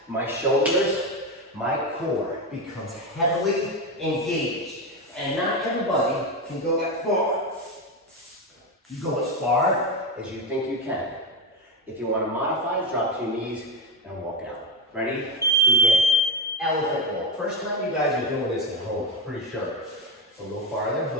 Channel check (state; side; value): normal; both; correlation 0.14